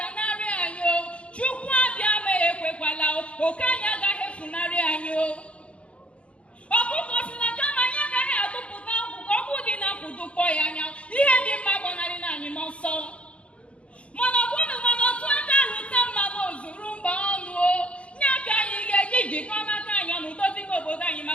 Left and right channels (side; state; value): right; late; 0.061 ms